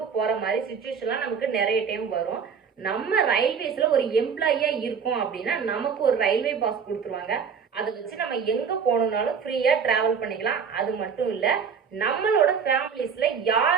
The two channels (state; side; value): quieter; left; 6.5 dB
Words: போகிற மாதிரி சுச்சுவேஷன்லாம் நமக்கு நிறைய டைம் வரும். நம்ம ரயில்வேஸில் ஒரு எம்ப்ளாயியாக இருக்கோம் அப்படின்னா நமக்கு ஒரு ரயில்வே பாஸ் கொடுத்துருவாங்க. அதை வச்சு நம்ம எங்கே போகணுன்னாலும் ஃப்ரீயாக ட்ராவல் பண்ணிக்கலாம். அது மட்டும் இல்லை, நம்மளோட ஃபேமிலிஸில்